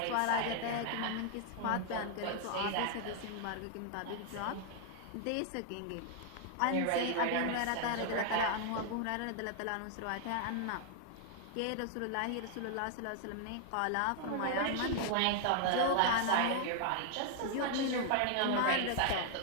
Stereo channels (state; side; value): different; both; correlation 0.00